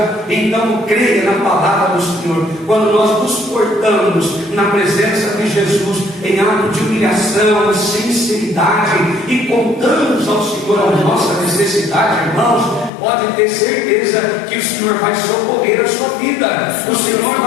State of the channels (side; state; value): right; drops out; at 12.9 s